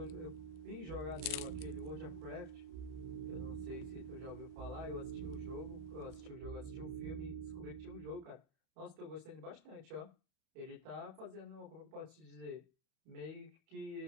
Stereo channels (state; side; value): late; left; 31 ms